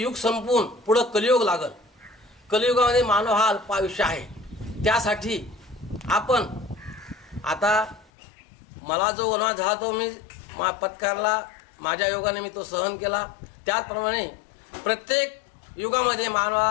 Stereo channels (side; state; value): right; drops out; at 8.1 s